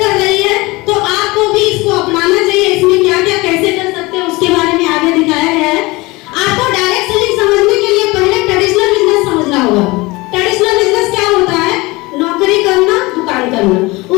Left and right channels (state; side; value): quieter; right; 22.7 dB